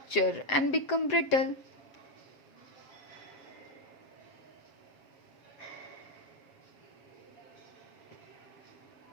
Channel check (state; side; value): late; right; 7.8 ms